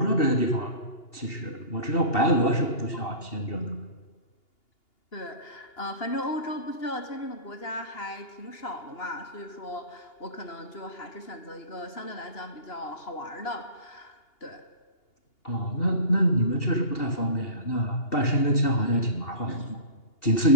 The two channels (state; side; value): late; right; 2.8 ms